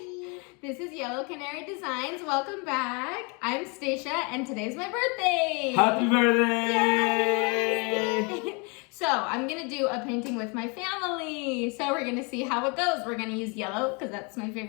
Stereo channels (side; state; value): right; quieter; 32.4 dB